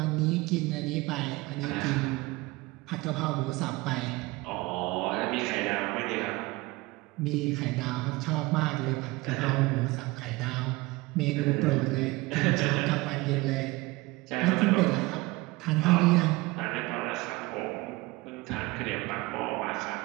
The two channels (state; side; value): quieter; left; 21.8 dB